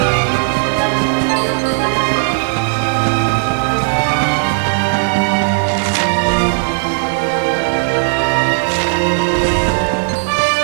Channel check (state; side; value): silent; left; 63 dB below the other